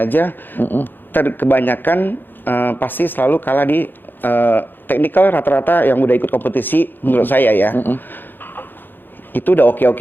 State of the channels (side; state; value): right; late; 0.093 ms